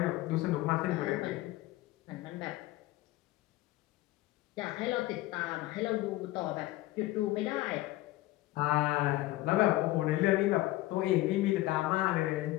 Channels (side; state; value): right; quieter; 17.6 dB